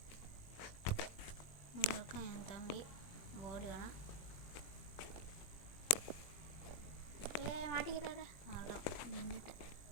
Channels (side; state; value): right; late; 21 ms